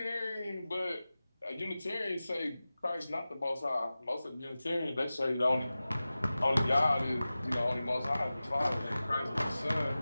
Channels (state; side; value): inverted; both; correlation -0.96